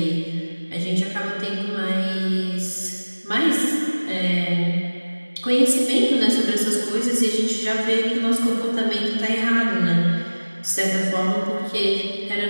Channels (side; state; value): both; inverted; correlation -1.00